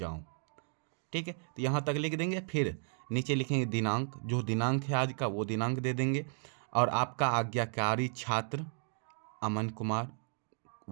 ठीक है, तो यहाँ तक लिख देंगे। फिर नीचे लिखेंगे दिनांक, जो दिनांक है आज का वो दिनांक दे देंगे। और आपका आज्ञाकारी छात्र अमन कुमार,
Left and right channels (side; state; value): left; silent; 55 dB below the other